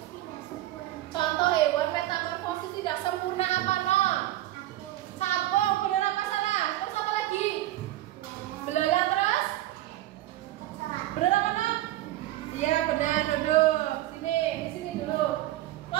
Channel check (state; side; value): quieter; left; 15.1 dB